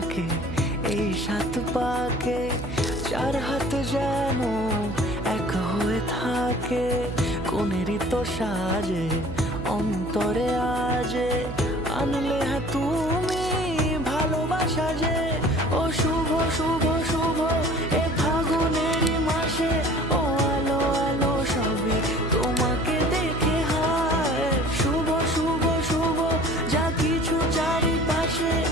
এই 7 পাকে, 4 হাত যেন এক হয়ে থাকে। কোনেরই তো সাজে অন্তরে আজে আনলে তুমি ভালোবাসা যে। ও শুভ শুভ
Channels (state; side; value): noise; right; hum, 9 dB below the sound